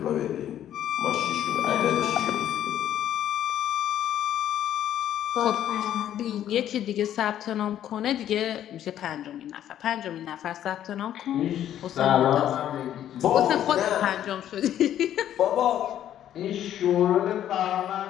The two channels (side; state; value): right; quieter; 11.1 dB